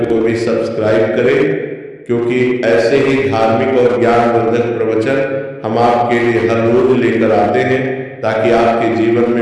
को भी सब्सक्राइब करें, क्योंकि ऐसे ही धार्मिक और ज्ञानवर्धक प्रवचन हम आपके लिए हर रोज लेकर आते हैं, ताकि आपके जीवन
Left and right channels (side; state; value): both; identical; correlation 1.00